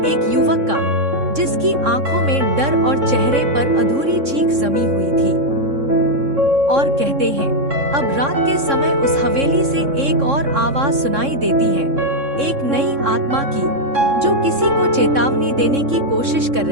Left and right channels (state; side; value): late; left; 3.6 ms